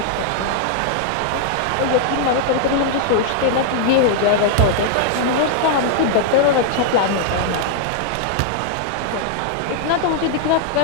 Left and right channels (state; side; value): different; both; correlation -0.01